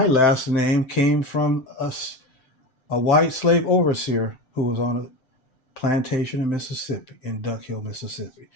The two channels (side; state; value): right; late; 7.7 ms